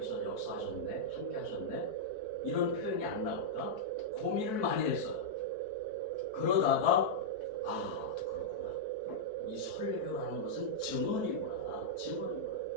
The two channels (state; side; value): late; right; 4.6 ms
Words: 역사하셨네, 함께 하셨네, 이런 표현이 안 나올까? 고민을 많이 했어요. 그러다가 그렇구나. 이 설교라는 것은 증언이구나.